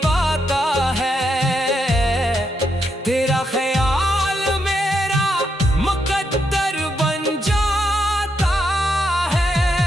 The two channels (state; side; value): normal; both; correlation 0.80